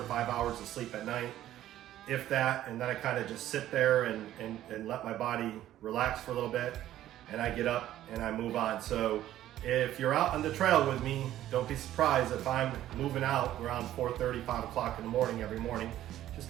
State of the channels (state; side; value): quieter; left; 13.0 dB